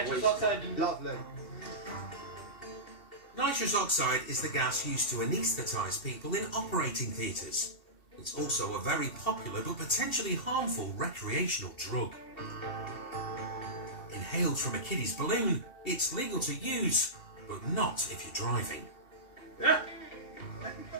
oxide and... Lovely. Nitrous oxide is the gas used to anaesthetise people in operating theatres. It's also a very popular but potentially harmful recreational drug. Inhaled from a kiddie's balloon, it's legal to use, but not if you're driving.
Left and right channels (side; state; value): right; late; 2.7 ms